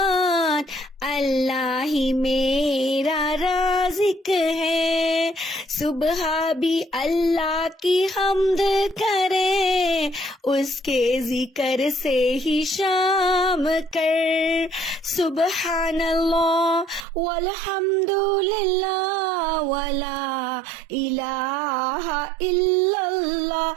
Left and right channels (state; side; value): drops out; left; at 17.1 s